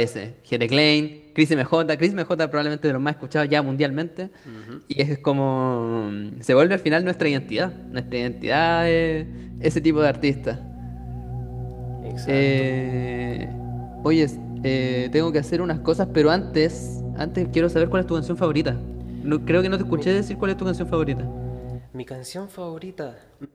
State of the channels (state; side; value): identical; both; correlation 1.00